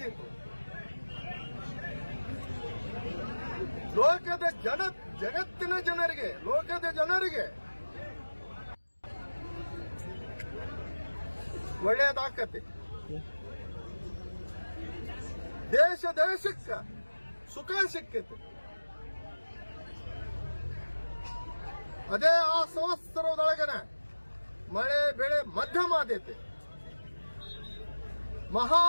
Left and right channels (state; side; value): inverted; both; correlation -1.00